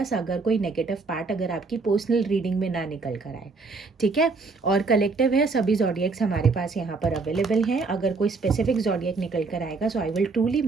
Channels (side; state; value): left; quieter; 4.1 dB